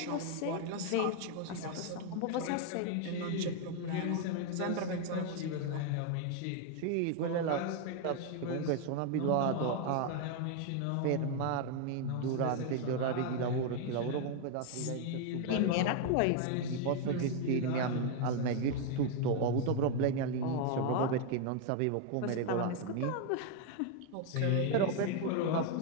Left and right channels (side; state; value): both; different; correlation 0.01